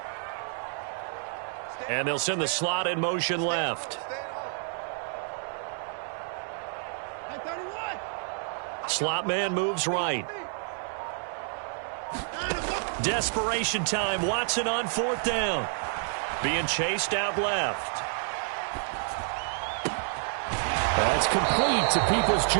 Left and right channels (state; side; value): silent; left; 55 dB below the other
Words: And they'll send the slot in motion left. Slot man moves right. Desperation time. Watson on 4th down. Being chased out left. That's complete to